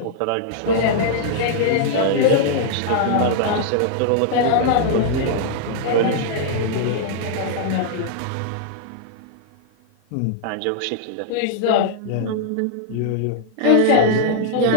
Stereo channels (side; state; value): both; different; correlation -0.01